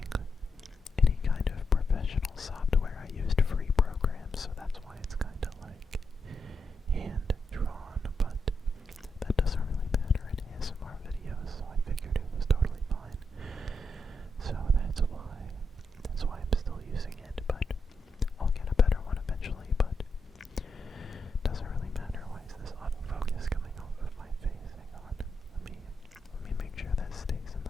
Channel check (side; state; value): both; normal; correlation 0.83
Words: any kind of professional software. I used free programs, so that's why it's kind of like hand-drawn, but that doesn't really matter in ASMR videos, so I figured it was totally fine. So that's why I'm still using it, but I'll get a better one eventually, but doesn't really matter. Why is this autofocus coming off of my face? Hang on. Let me make sure that stays in